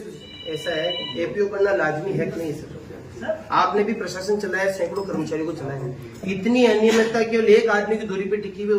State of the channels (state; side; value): identical; both; correlation 1.00